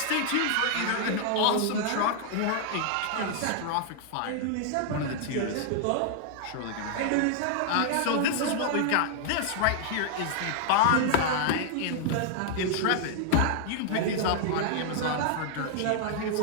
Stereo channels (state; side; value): different; both; correlation 0.00